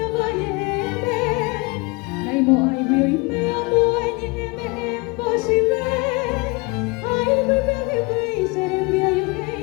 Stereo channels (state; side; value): quieter; right; 27.3 dB